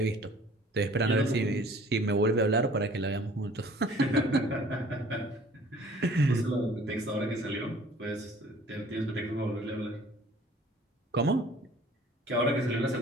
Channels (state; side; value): normal; both; correlation 0.52